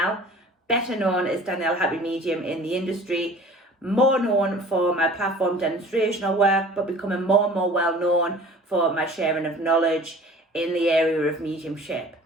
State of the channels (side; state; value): both; normal; correlation 0.45